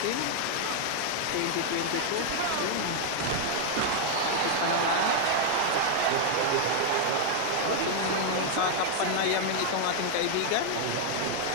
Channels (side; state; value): both; different; correlation 0.00